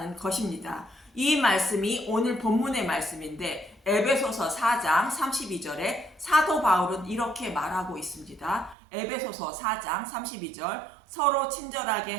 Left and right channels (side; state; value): left; drops out; at 8.8 s